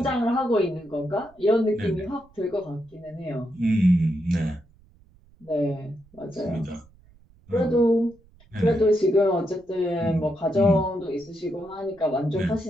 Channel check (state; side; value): noise; right; rumble, 28 dB below the sound